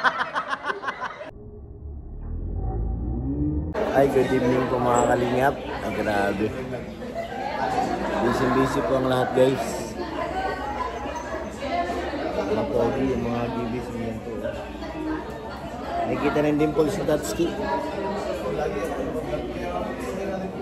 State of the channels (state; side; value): identical; both; correlation 1.00